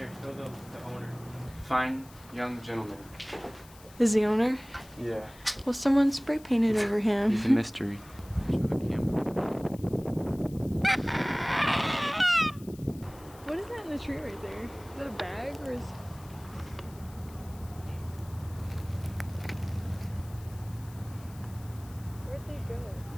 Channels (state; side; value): noise; left; hiss, 22 dB below the sound